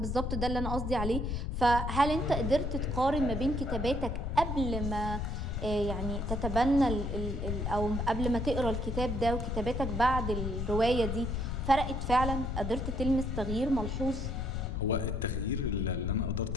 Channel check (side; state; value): left; noise; rumble, 2 dB below the sound